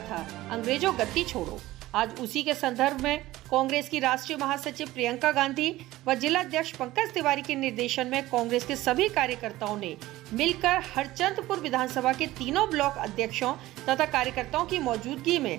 था, अंग्रेजों गद्दी छोड़ो। आज उसी के संदर्भ में कांग्रेस की राष्ट्रीय महासचिव प्रियंका गांधी व जिला अध्यक्ष पंकज तिवारी के निर्देशन में कांग्रेस के सभी कार्यकर्ताओं ने मिलकर हरचंदपुर विधानसभा के तीनों ब्लॉक अध्यक्षों तथा कार्यकर्ताओं की मौजूदगी में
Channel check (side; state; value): left; quieter; 16.9 dB